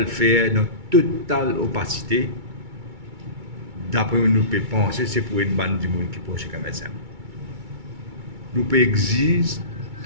faire dans totale opacité. D'après nous pouvons penser, c'est pour une bande de monde qui proche comme ça. Nous pouvons exiger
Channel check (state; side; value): late; left; 2.3 ms